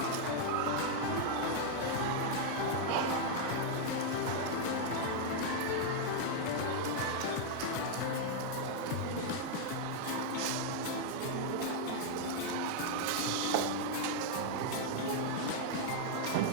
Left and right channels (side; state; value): both; different; correlation 0.00